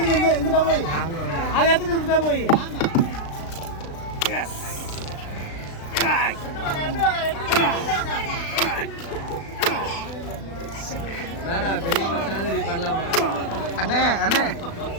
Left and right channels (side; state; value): right; late; 36 ms